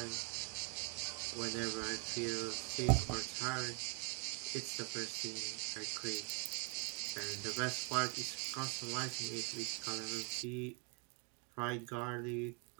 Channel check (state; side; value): quieter; left; 35.0 dB